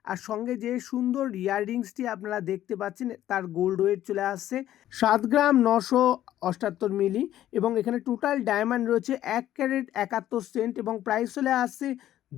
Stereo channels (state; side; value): quieter; right; 12.6 dB